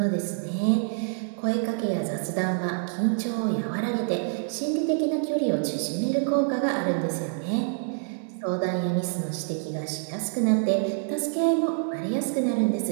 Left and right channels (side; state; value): left; silent; 60 dB below the other